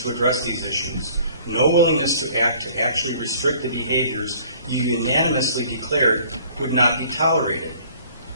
address these issues, no willingness to actually restrict the behaviors you unanimously declared would not be tolerated.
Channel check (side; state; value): both; inverted; correlation -0.54